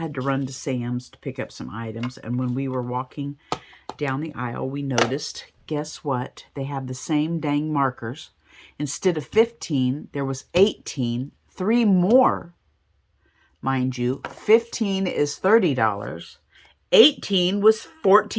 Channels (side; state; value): both; identical; correlation 1.00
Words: to run to Sam's to pick up some items, and when we were walking down the aisle, we noticed, guess what? They have the same dang markers. Instead of 15, there was 18, 3 more. Mind you, 15 is $30. 18 was